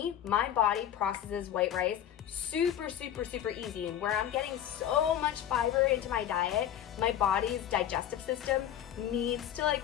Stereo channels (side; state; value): right; quieter; 10.6 dB